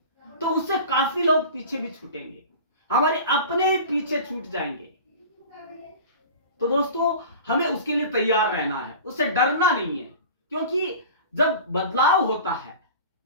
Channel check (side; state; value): both; inverted; correlation -0.37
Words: तो उससे काफी लोग पीछे भी छूटेंगे, हमारे अपने पीछे छूट जाएंगे। तो दोस्तों, हमें उसके लिए तैयार रहना है, उससे डरना नहीं है। क्योंकि जब बदलाव होता है,